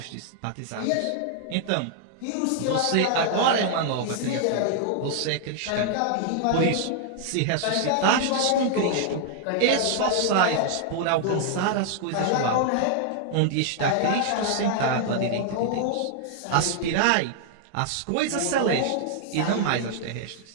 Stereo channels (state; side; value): different; both; correlation -0.01